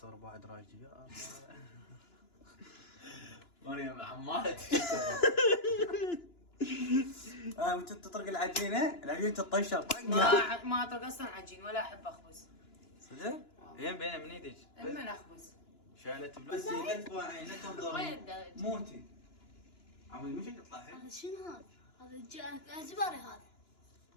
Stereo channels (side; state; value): right; late; 2.9 ms